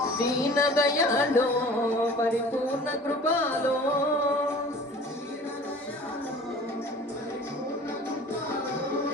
దీన దయాళో పరిపూర్ణ కృపాలో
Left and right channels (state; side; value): normal; both; correlation 0.45